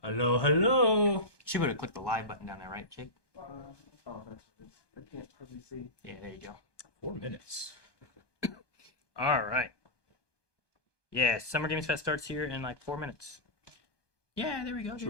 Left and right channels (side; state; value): right; late; 1.2 ms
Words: Hello, hello. She would have clicked the live button down there, right, Jake? I can't probably see. Yeah, there you go. 4 minutes. All right. Yeah, Summer Games Fest starts here in like 4 minutes. Yeah, there we go.